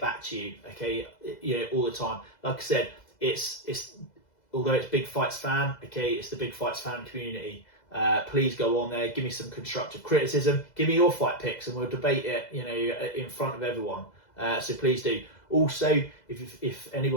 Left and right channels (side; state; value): right; late; 2.0 ms